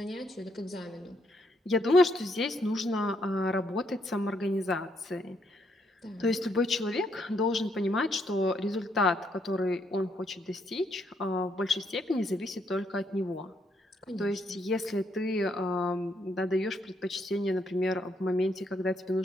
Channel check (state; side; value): normal; both; correlation 0.74